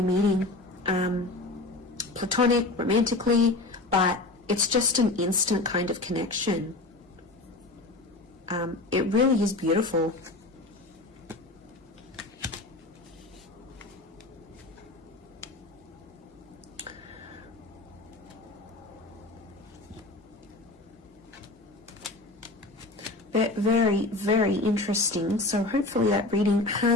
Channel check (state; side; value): quieter; right; 3.1 dB